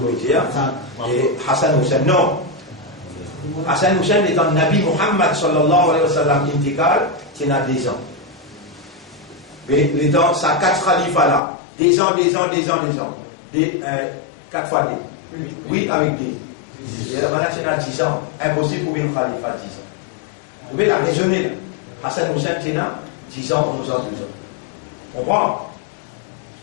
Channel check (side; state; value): right; drops out; at 11.4 s